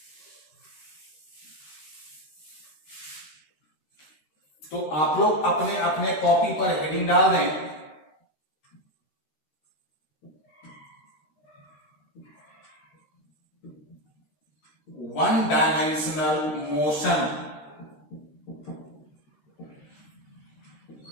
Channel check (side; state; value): right; late; 13 ms